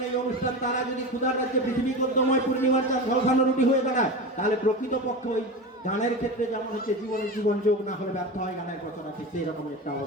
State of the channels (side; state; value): both; normal; correlation 0.25